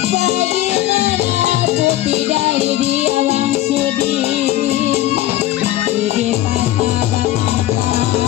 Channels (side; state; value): right; quieter; 14.5 dB